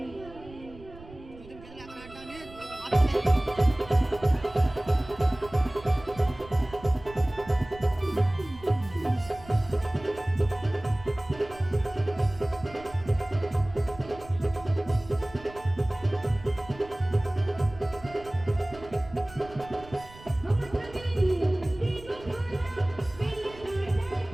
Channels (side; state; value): right; noise; rumble, 19 dB below the sound